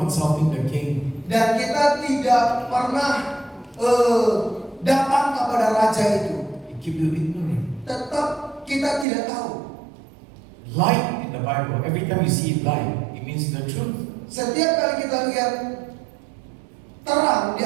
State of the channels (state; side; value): drops out; left; at 9.1 s